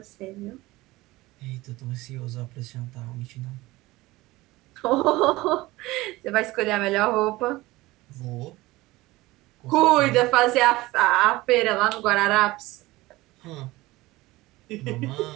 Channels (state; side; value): quieter; left; 19.5 dB